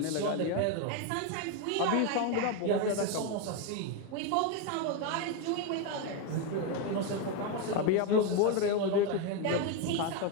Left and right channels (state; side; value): different; both; correlation 0.02